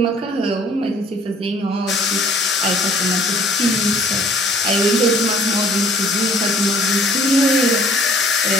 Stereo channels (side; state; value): both; normal; correlation 0.55